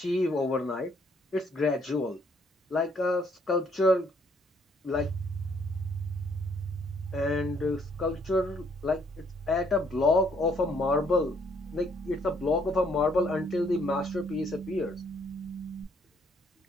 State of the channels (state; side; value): normal; both; correlation 0.67